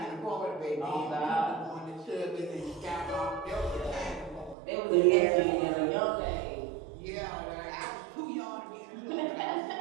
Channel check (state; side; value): drops out; left; at 4.5 s